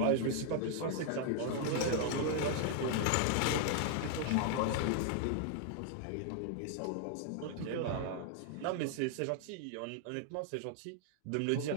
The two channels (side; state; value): both; different; correlation 0.00